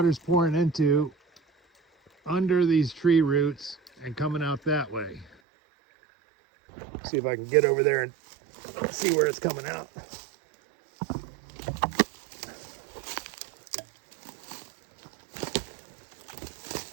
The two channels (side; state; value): left; drops out; at 5.4 s